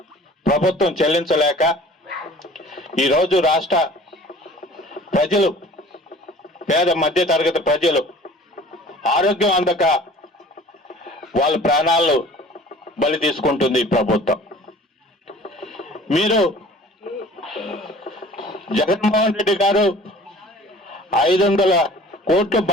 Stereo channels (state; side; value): normal; both; correlation 0.47